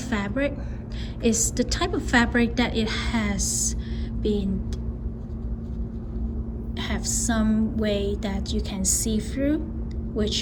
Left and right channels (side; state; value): both; identical; correlation 1.00